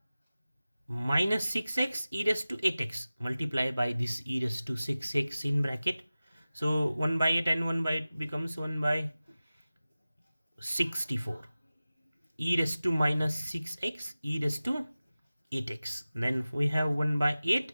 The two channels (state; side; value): inverted; both; correlation -0.96